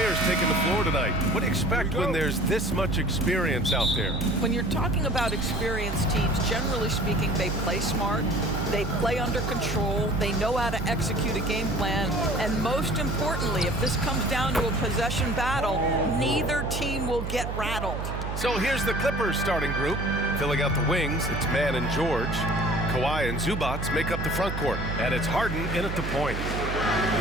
taking the floor tonight. What do you expect when there's this much experience out there? When you're talking about experienced teams, generally speaking, they play smart, they play under control, they know how to execute a game plan, and most importantly, if this comes down to a possession battle, neither team will get rattled. So here's the Clippers starting group. Filling out the wings, it's Mann and George. Kawhi and Zubac make up the front court, and it's Harden in at the point.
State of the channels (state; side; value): noise; right; hum, 4 dB below the sound